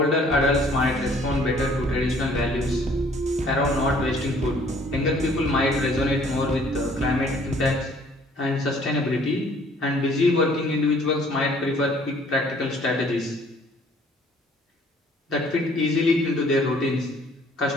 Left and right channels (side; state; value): both; normal; correlation 0.58